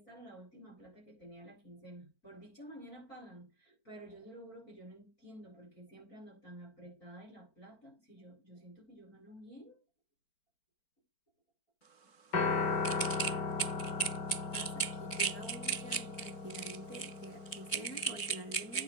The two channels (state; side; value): late; right; 4.5 ms